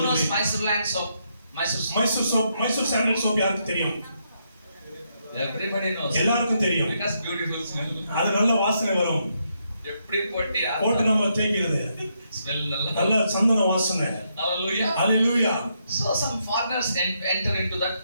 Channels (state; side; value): inverted; both; correlation -0.78